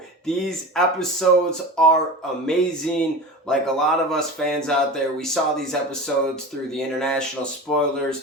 these episodes are amazing. Like a lot of us fans out there, we saw these episodes through the international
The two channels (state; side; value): normal; both; correlation 0.31